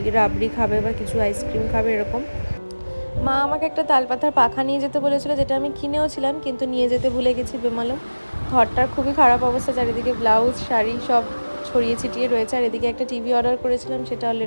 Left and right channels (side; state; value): both; inverted; correlation -1.00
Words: রাবড়ি খাবে বা কিছু আইসক্রিম খাবে এরকম। মা আমাকে একটা তালপাতার পাখা নিয়ে যেতে বলেছিল, যেটা আমি কিনেও ছিলাম কিন্তু নিয়ে যেতে ভুলে গেছি বেমালুম। ঘরটার খুবই খারাপ অবস্থা, চারিদিকে ব্লাউজ শাড়ি সব ছড়িয়ে ছিটিয়ে রয়েছে। আর এদিকে একটা টিভি অর্ডার করেছিলাম, সেটা